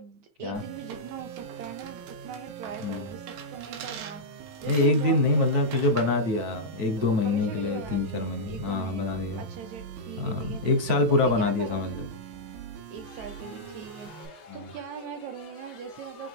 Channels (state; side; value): late; left; 9.2 ms